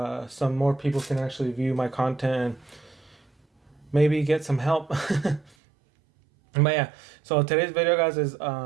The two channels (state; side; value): drops out; left; at 5.5 s